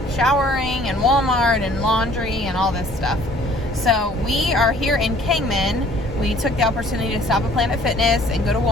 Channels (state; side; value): normal; both; correlation 0.55